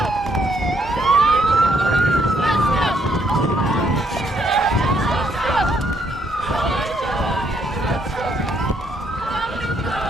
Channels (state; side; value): normal; both; correlation 0.72